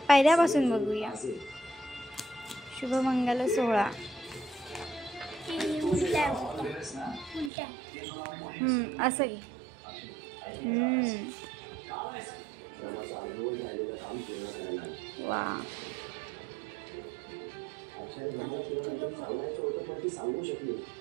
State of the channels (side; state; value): left; drops out; at 7.5 s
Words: पहिल्यापासून बघूया. शुभमंगल सोहळा. असं की वा.